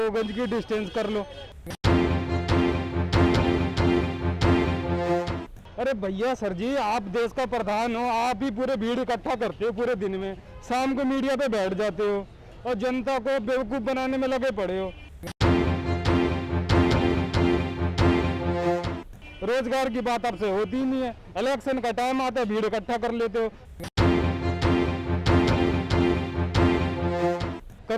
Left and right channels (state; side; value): identical; both; correlation 1.00